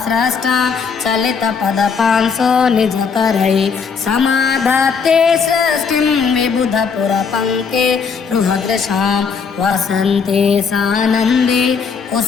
स्रष्टा चलितपदपांसो निजकरै समाधत्ते सृष्टिं विबुधपुरपङ्के रुहदृशां वसन्ते सानन्दे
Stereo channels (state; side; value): quieter; right; 5.8 dB